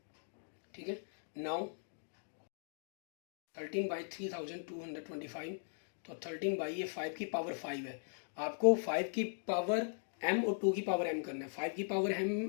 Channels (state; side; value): silent; right; digital silence